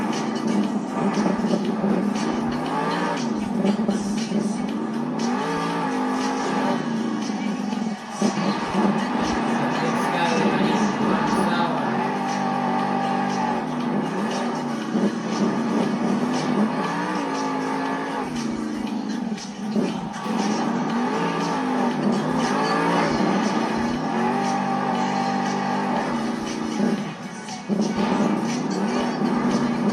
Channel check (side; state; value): both; identical; correlation 1.00